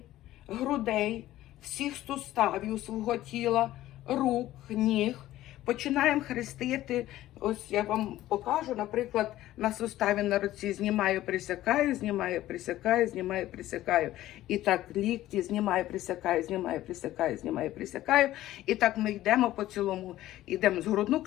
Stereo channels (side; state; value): right; quieter; 14.7 dB